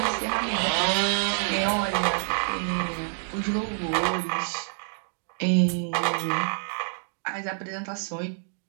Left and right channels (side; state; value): left; silent; 56 dB below the other